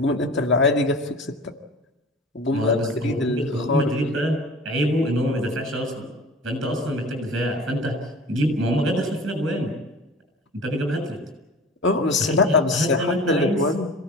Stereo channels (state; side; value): normal; both; correlation 0.40